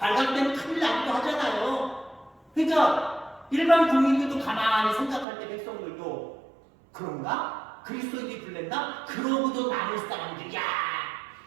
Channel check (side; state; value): left; drops out; at 5.2 s